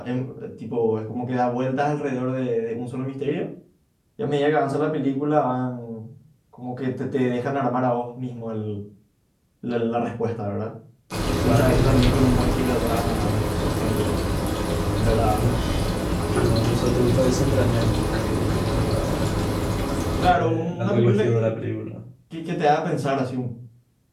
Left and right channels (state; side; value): identical; both; correlation 1.00